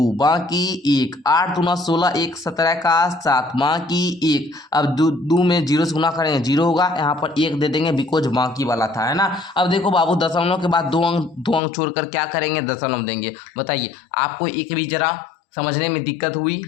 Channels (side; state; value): right; drops out; at 11.6 s